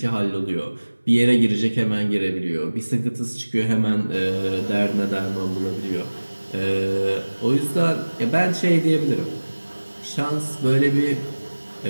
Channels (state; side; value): inverted; both; correlation -1.00